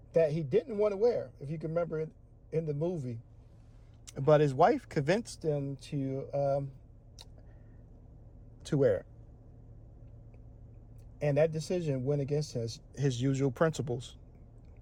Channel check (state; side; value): identical; both; correlation 1.00